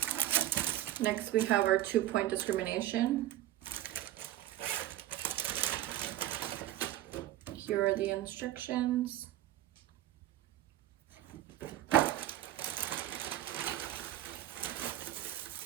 Next, we have our 2-point discrimination. Here are the instructions.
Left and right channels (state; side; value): quieter; left; 13.8 dB